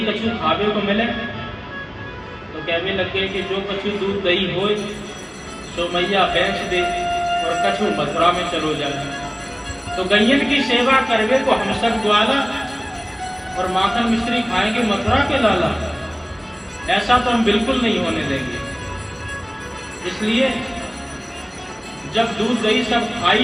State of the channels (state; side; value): identical; both; correlation 1.00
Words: कछु खावे को मिले, तो कहने लगे कि जो कछु दूध दही हो सो मैया बेच दे और कछु मथुरा में चलो जाए। तो गैयन की सेवा करवे को हम सब ग्वाला और माखन मिश्री खाएंगे मथुरा के लाला, ऐसा तो हम बिल्कुल नहीं होने देंगे। इसलिए जब दूध दही सब खा